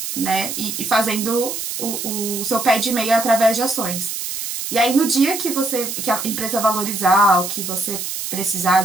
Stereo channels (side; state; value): right; noise; hiss, 5 dB below the sound